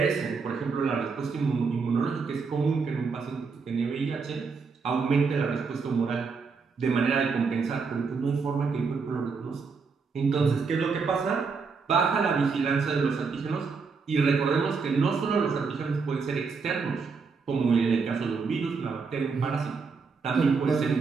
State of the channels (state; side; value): quieter; left; 5.0 dB